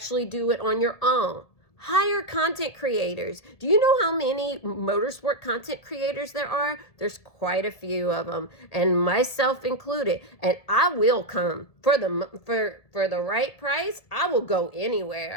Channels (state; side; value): late; right; 1.7 ms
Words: do it on your own, hire content creators. Do you know how many motorsport content creators there are? There's quite a few of them, and myself included. And I will come for the right price. I will go